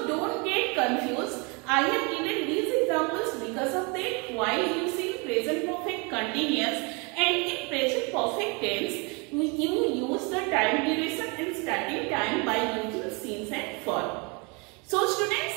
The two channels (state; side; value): quieter; left; 30.7 dB